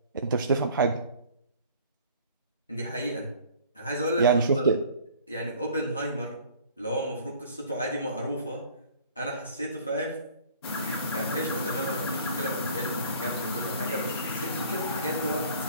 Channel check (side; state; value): both; inverted; correlation -0.50